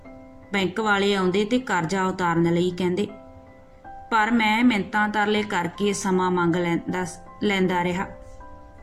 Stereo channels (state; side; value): identical; both; correlation 1.00